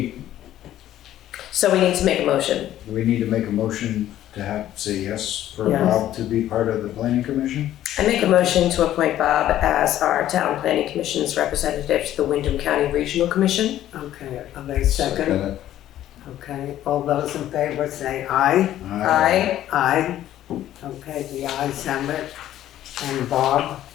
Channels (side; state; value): right; quieter; 12.6 dB